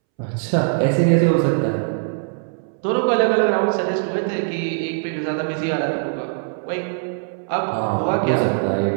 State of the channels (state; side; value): silent; left; 65 dB below the other